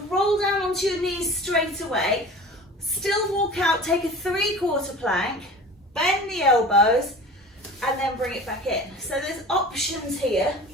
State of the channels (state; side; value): normal; both; correlation 0.39